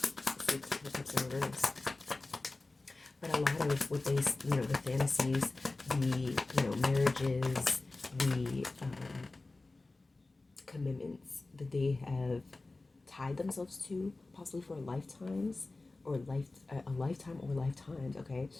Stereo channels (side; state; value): right; quieter; 3.2 dB